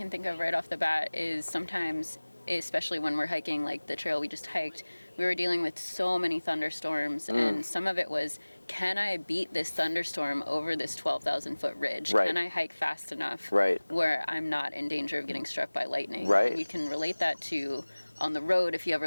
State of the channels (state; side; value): inverted; both; correlation -1.00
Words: think of right off the bat is sometimes, especially when we're hiking like the trail we just hiked, we were dealing with so many thunderstorms, and some of it was, can I beat this thunderstorm over this 12,000 foot ridge? Right. Can I hike fast enough Right. where I'm not in danger of getting struck by lightning? Right. And you can relate that to on the road if you